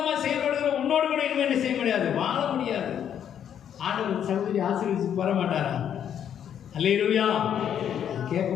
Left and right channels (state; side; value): quieter; right; 9.2 dB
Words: செயல்படுகிற உன்னோடு கூட இன்னும் என்ன செய்ய முடியாது, வாழ முடியாது. ஆண்டவர் சகோதரி ஆசீர்வதிச்சு வர மாட்டாரா? அல்லேலூயா.